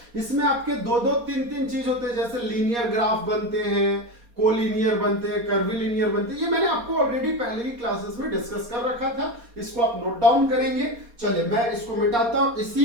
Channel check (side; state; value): left; late; 4.2 ms